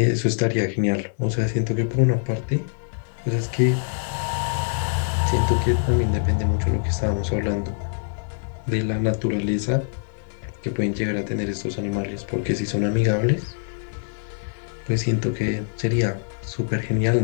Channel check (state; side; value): silent; right; digital silence